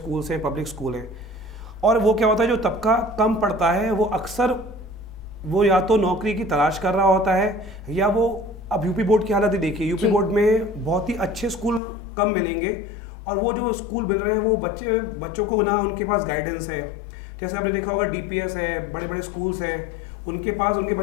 हैं, पब्लिक स्कूल हैं। और वो क्या होता है, जो तबका कम पढ़ता है वो अक्सर वो या तो नौकरी की तलाश कर रहा होता है या वो, अब यूपी बोर्ड की हालत ही देखिए, यूपी बोर्ड में बहुत ही अच्छे स्कूल कम मिलेंगे और वो जो स्कूल मिल रहे हैं वो बच्चों को ना उनके पास गाइडेंस है। जैसे आपने देखा होगा डीपीएस है, बड़े बड़े स्कूल्स हैं, उनके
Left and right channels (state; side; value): drops out; right; at 11.8 s